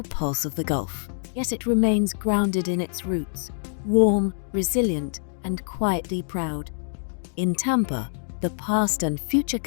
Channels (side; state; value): right; silent; digital silence